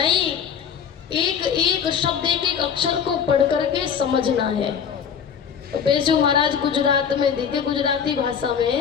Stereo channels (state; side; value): quieter; right; 7.5 dB